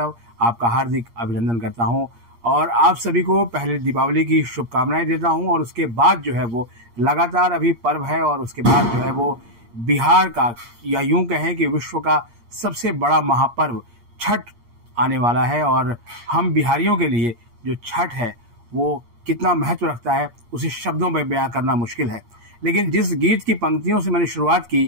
आपका हार्दिक अभिनंदन करता हूं और आप सभी को पहले दीपावली की शुभकामनाएं देता हूं। और उसके बाद जो है वो लगातार अभी पर्व है और उसके बाद जो है वो बिहार का या यूं कहें कि विश्व का सबसे बड़ा महापर्व छठ आने वाला है। और हम बिहारियों के लिए जो छठ है वो कितना महत्व रखता है उसे शब्दों में बयां करना मुश्किल है। लेकिन जिस गीत की पंक्तियों से मैंने शुरुआत की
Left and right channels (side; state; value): left; late; 8.5 ms